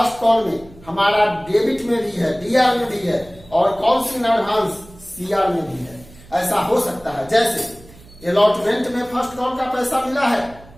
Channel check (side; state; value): right; noise; hum, 22 dB below the sound